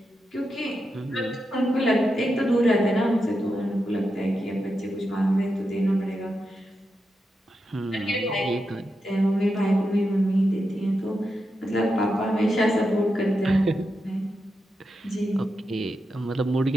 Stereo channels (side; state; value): both; normal; correlation 0.87